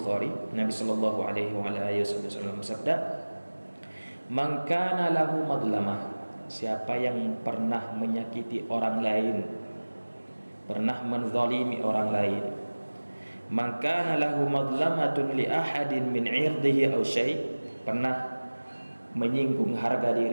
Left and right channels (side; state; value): both; inverted; correlation -1.00